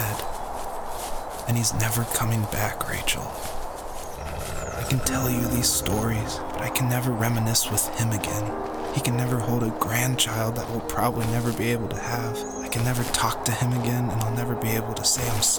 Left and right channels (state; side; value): identical; both; correlation 1.00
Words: and he's never coming back, Rachel. I can tell you these stories, but I can never reminisce with him again. He can never hold a grandchild that we'll probably never be able to have. I can never talk to him again, and I'll never be able to say I'm